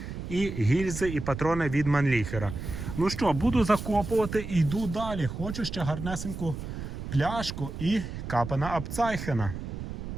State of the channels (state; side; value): noise; right; rumble, 7 dB below the sound